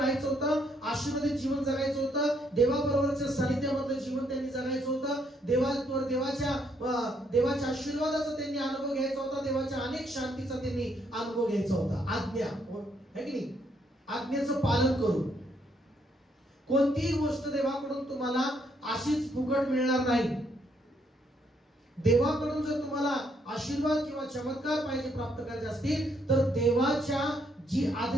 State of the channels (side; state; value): both; normal; correlation 0.72